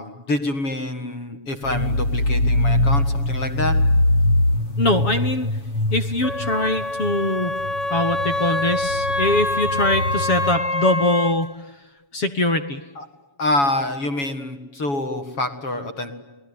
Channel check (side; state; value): right; late; 7.2 ms